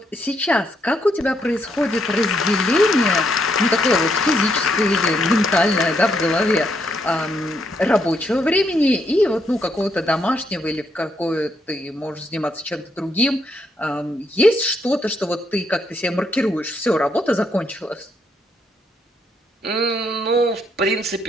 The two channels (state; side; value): normal; both; correlation 0.75